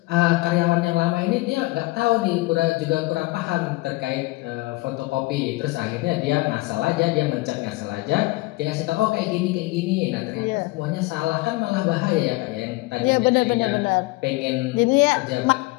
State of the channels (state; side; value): quieter; right; 21.9 dB